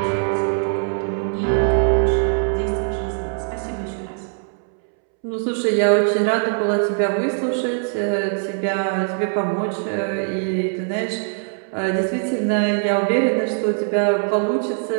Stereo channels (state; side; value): silent; left; 65 dB below the other